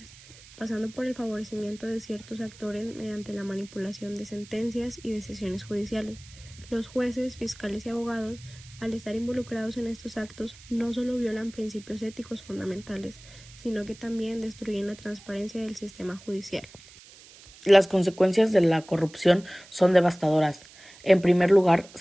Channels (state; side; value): noise; right; hiss, 21 dB below the sound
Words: pasando por el favorecimiento de ciertos actores mediante la manipulación de sentencias y decisiones judiciales. Los jueces, fiscales y abogados, al estar involucrados en estos actos, no solo violan principios éticos fundamentales, sino que también destruyen la transparencia del sistema judicial. Las consecuencias de la corrupción son devastadoras. En primer lugar,